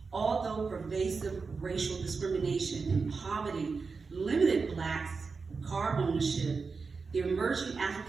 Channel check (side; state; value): left; quieter; 4.7 dB